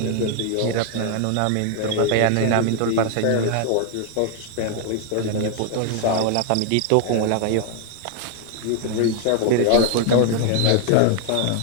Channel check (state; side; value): different; both; correlation 0.00